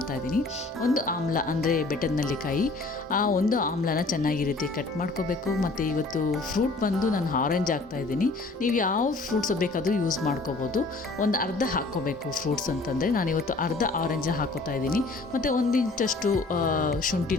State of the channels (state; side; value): quieter; right; 3.4 dB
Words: ಒಂದು ಆಮ್ಲ ಅಂದರೆ ಬೆಟ್ಟದ ನೆಲ್ಲಿಕಾಯಿ, ಆ ಒಂದು ಆಮ್ಲನ ಚೆನ್ನಾಗಿ ರೀತಿ ಕಟ್ ಮಾಡ್ಕೋಬೇಕು. ಮತ್ತು ಇವತ್ತು ಫ್ರೂಟ್ ಬಂದು ನಾನು ಆರೆಂಜ್ ಹಾಕ್ತಾಯಿದ್ದೀನಿ. ನೀವು ಯಾವ ಫ್ರೂಟ್ಸ್ ಬೇಕಾದರೂ ಯೂಸ್ ಮಾಡ್ಕೋಬೋದು. ಒಂದು ಅರ್ಧ ಹಾಕ್ಕೋಬೇಕು ಫ್ರೂಟ್ಸ್ ಅಂತಂದರೆ, ನಾನಿವತ್ತು ಅರ್ಧ ಆರೆಂಜ್ ಹಾಕೋತಾ ಇದ್ದೀನಿ. ಮತ್ತು 1 ಇಂಚಷ್ಟು